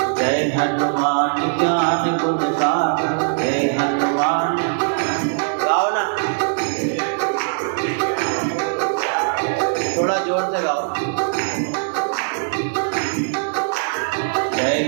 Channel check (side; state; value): left; silent; digital silence